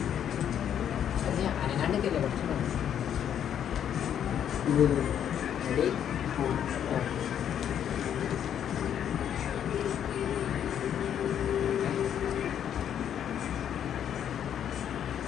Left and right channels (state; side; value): quieter; right; 9.4 dB